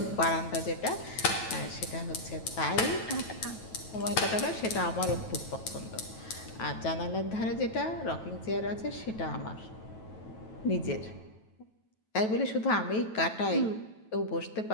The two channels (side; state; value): right; late; 9.2 ms